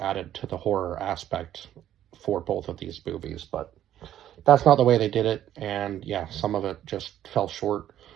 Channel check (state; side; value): quieter; left; 11.6 dB